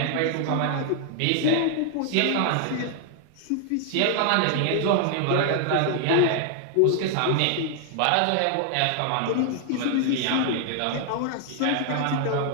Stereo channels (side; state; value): both; different; correlation 0.00